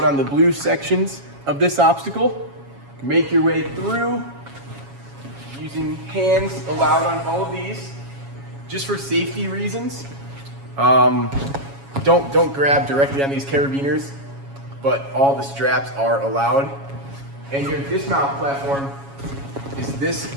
on the blue sections of this obstacle. Make your way through using hands allowed on all of these. Just for safety reasons, don't grab directly on these carabiners, but all the straps are allowed. And your dismount platform is this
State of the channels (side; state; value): left; late; 7.2 ms